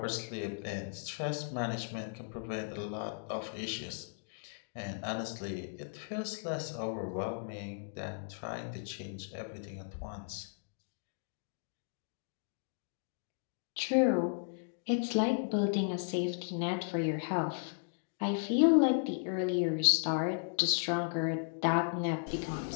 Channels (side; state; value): right; silent; digital silence